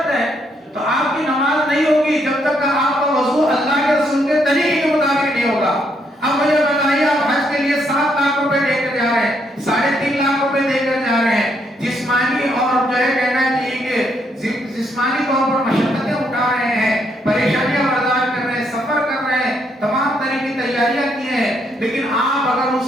ہے. تو آپ کی نماز نہیں ہوگی جب تک کہ آپ کا وضو اللہ کے رسول کے طریقے کے مطابق نہیں ہوگا. اب مجھے بتائیے، آپ حج کے لیے 7 لاکھ روپے دے کر جا رہے ہیں، 3.5 لاکھ روپے دے کر جا رہے ہیں، جسمانی اور جو ہے کہنا چاہیے کہ جسمانی طور پر مشقتیں اٹھا رہے ہیں، پریشانیاں برداشت کر رہے ہیں، سفر کر رہے ہیں، تمام طرح کی تیاریاں کی ہیں. لیکن آپ اگر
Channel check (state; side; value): normal; both; correlation 0.74